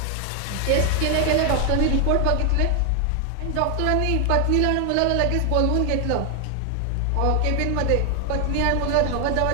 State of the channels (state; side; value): different; both; correlation 0.00